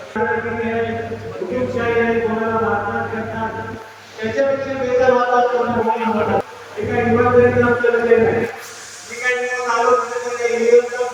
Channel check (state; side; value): identical; both; correlation 1.00